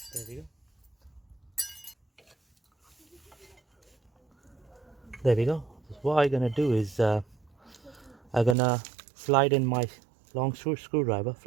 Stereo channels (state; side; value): drops out; left; at 8.6 s